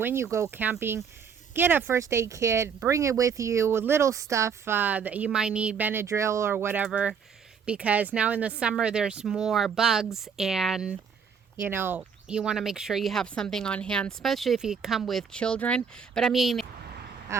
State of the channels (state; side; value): quieter; left; 6.6 dB